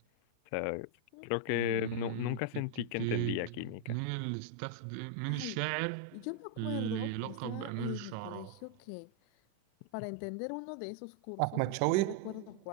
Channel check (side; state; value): both; different; correlation 0.00